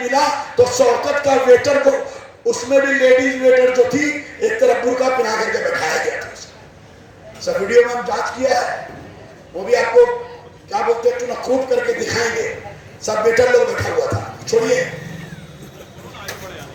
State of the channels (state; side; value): identical; both; correlation 1.00